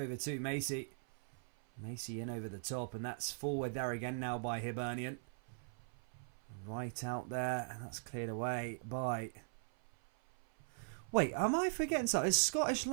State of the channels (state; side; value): silent; left; 51 dB below the other